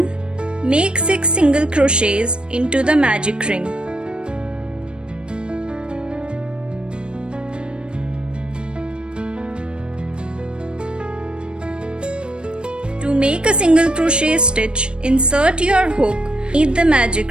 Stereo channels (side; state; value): left; late; 0.055 ms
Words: Make 6 single crochets into the magic ring. To make a single crochet stitch, insert your hook beneath the magic